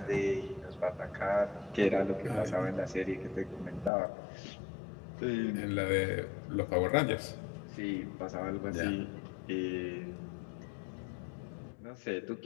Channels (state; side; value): drops out; right; at 3.9 s